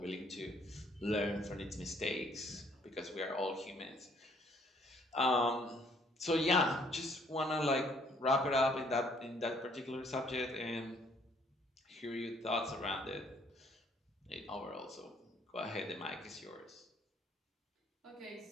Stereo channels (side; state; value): both; normal; correlation 0.63